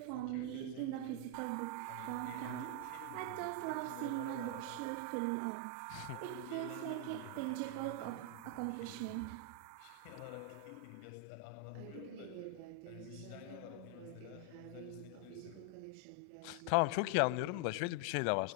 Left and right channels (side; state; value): both; different; correlation 0.00